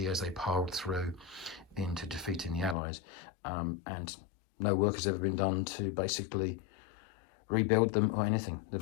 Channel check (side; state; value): right; drops out; at 2.8 s